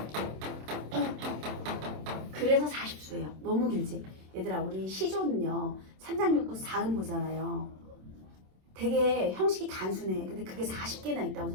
그래서 40수예요. 너무 길지? 얘들아, 우리 시조는요. 3장육구 4음 보잖아요. 되게 형식이 단순해. 근데 그게 40개나 있다고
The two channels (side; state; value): left; late; 27 ms